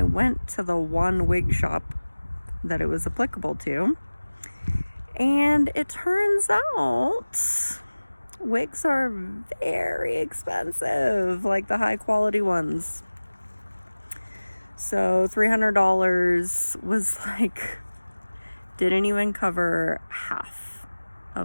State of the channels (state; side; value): inverted; both; correlation -1.00